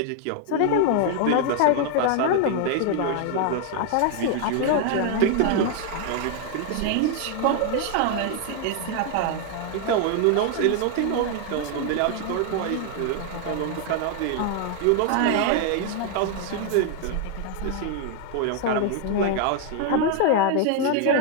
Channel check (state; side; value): different; both; correlation 0.00